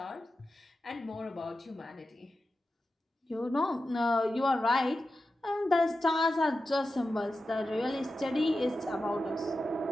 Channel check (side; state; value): both; normal; correlation 0.92